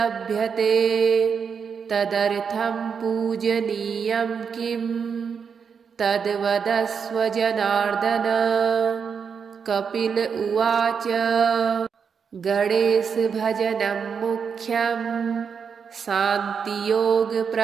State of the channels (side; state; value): left; quieter; 6.4 dB